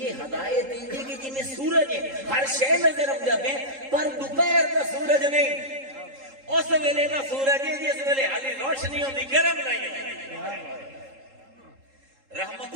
ہدایت انجے کہ جی میں سورج ہے، ہر شے نظر آندا پے پر دوپہر دا سورج نہیں، اس ویلے دا سورج ہے جس ویلے حالی روشنی ہوندی گرم نہیں ہوندی۔ رحمت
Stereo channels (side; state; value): left; late; 3.7 ms